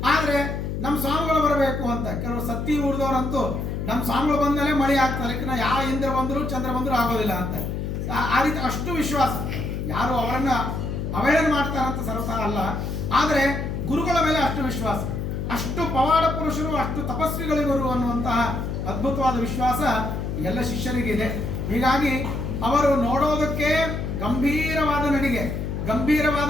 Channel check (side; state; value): left; noise; hum, 3 dB below the sound